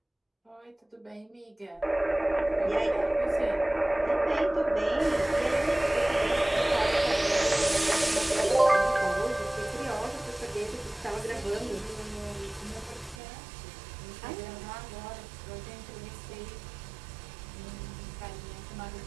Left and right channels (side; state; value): left; drops out; at 13.2 s